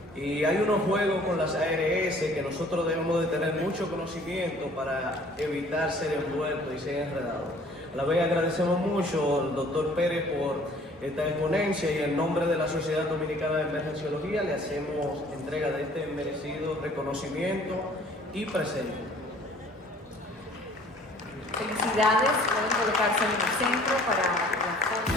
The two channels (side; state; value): both; normal; correlation 0.54